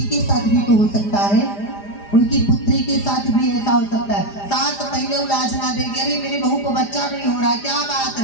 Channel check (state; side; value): late; right; 4.9 ms